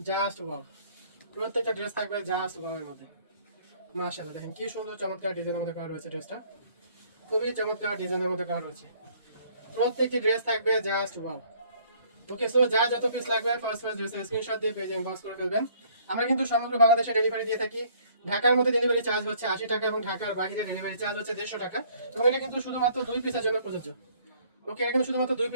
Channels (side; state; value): both; inverted; correlation -0.60